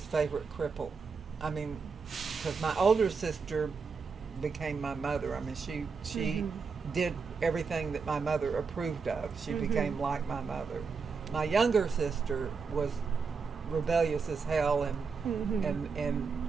favorite cripple. I mean, because my older sister became my mother. I mean, she did everything that my mother approved of. She became like my mother. My younger sister was rebellious as hell, and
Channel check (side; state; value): left; quieter; 5.2 dB